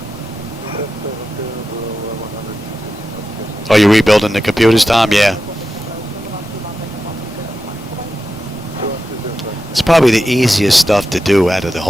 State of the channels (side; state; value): both; normal; correlation 0.90